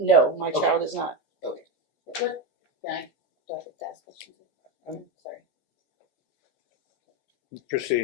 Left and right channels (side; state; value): right; late; 14 ms